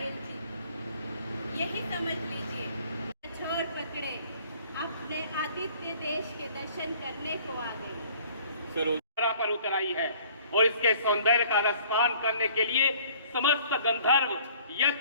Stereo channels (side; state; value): both; inverted; correlation -0.54